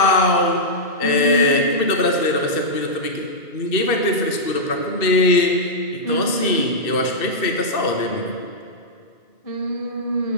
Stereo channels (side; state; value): right; late; 2.6 ms